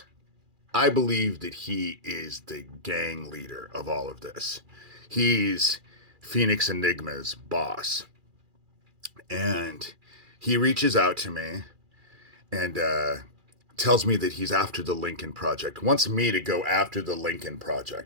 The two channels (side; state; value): left; late; 2.4 ms